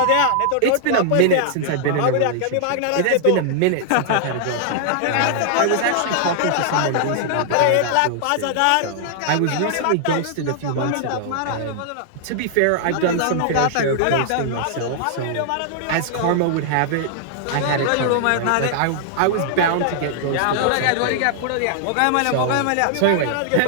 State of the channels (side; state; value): both; different; correlation -0.01